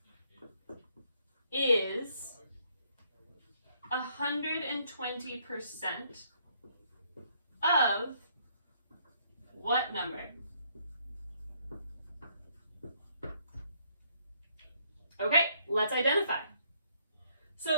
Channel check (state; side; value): inverted; both; correlation -0.69